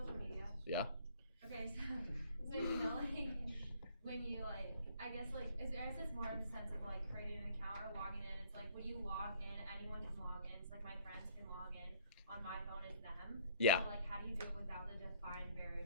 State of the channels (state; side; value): inverted; both; correlation -0.59